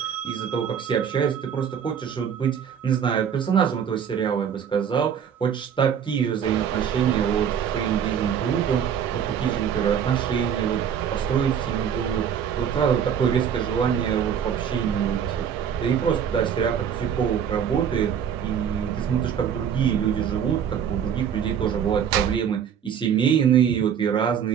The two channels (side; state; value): left; quieter; 8.2 dB